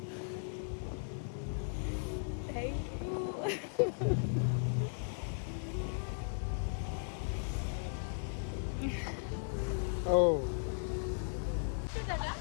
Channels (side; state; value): right; silent; 53 dB below the other